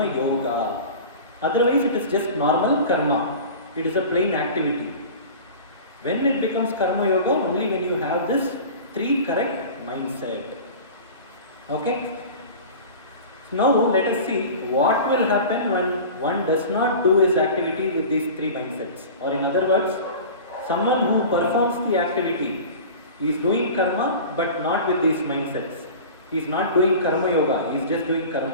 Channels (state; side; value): inverted; both; correlation -0.36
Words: yoga. Otherwise it is just normal karma. It is a plain activity. When it becomes karma yoga, only when you have this three correct mindset. Okay? Now let us see what will happen when one does not do his activity with these three mindsets. Or in other words, someone who performs the activity is doing karma but not with these mindsets. He is not doing karma yoga, he is just doing